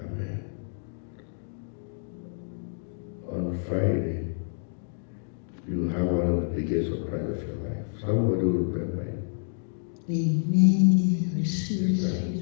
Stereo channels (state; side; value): silent; right; digital silence